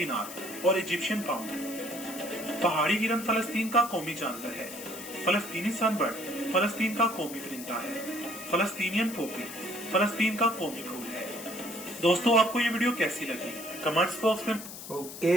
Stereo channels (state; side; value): noise; left; hiss, 11 dB below the sound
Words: और इजिप्शियन पाउंड। पहाड़ी हिरन फलस्तीन का कौमी जानवर है। फलस्तीनी सनबर्ड फलस्तीन का कौमी परिंदा है। फलस्तीनियन पोपी फलस्तीन का कौमी फूल है। दोस्तों, आपको ये वीडियो कैसी लगी? कमेंट्स बॉक्स में ওকে,